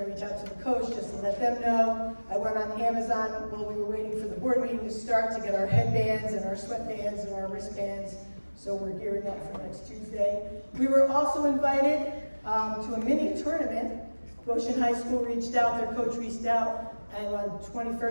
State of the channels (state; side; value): inverted; both; correlation -1.00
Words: to reach out to the coach just let them know. I went on Amazon while we were waiting for the board meeting to start to get our headbands and our sweatbands and our wristbands. So we're gearing up for next Tuesday. We were also invited to a mini tournament. Goshen High School reached out, their coach reached out, and on